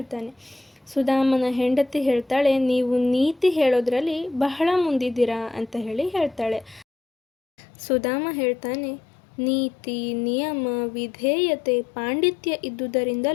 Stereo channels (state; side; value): drops out; right; at 6.9 s